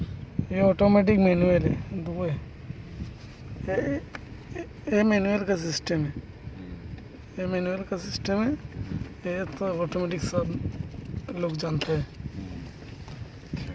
ये ऑटोमेटिक मैनुअल है, दो है। ये मैनुअल का सिस्टम है, ये मैनुअल का सिस्टम है। ये तो ऑटोमेटिक सब लोग जानते हैं।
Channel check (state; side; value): identical; both; correlation 1.00